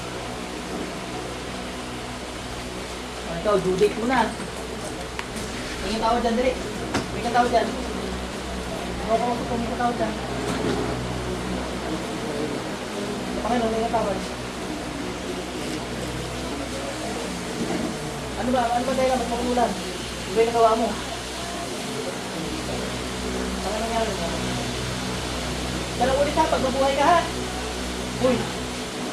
Ikaw, due date mo na. Tingin tao dyan, dali. Tingin tao dyan. Tingin tao dyan. Panginoon, tingin tao dyan. Ano ba dahil ba't makulan? Ano ba yung nagawa mo? Ano nangyari mo? Dalang ulit ha, pag mabuhay ka ha. Uy!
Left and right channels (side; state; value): both; identical; correlation 1.00